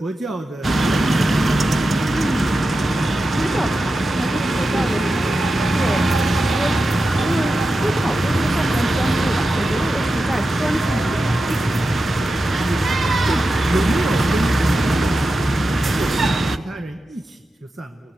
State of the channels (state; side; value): normal; both; correlation 0.91